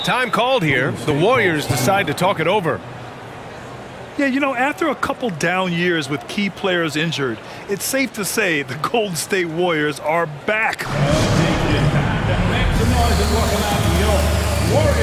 Time called here. The Warriors decide to talk it over. Yeah, you know, after a couple down years with key players injured, it's safe to say the Golden State Warriors are back. Make some noise and welcome out your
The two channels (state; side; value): identical; both; correlation 1.00